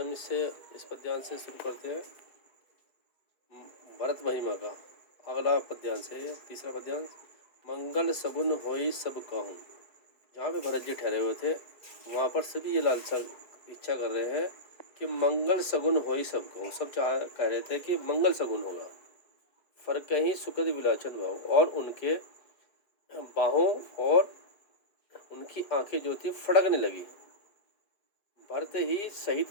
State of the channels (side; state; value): right; late; 4.7 ms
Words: इस पद्यांश से शुरू करते हैं भरत महिमा का। अगला पद्यांश है ये तीसरा पद्यांश। मंगल सगुन होई सब कहूँ। जहाँ पे भरत जी ठहरे हुए थे वहाँ पर सभी ये लालसा इच्छा कर रहे हैं कि मंगल सगुन होई सब कहूँ। सब कह रहे थे कि मंगल सगुन होगा। फर्क ही सुखद विलाचन भाव, और उनके बाहों और उनकी आंखें जो थी फड़कने लगी। भरत ही